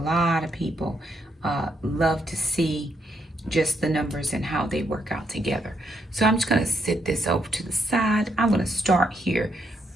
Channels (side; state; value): both; normal; correlation 0.77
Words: of people love to see just the numbers and how they work out together. So I'm just going to sit this over to the side. I'm going to start here